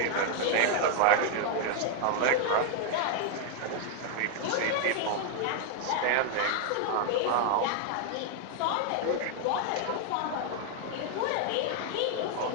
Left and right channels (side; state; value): both; different; correlation 0.00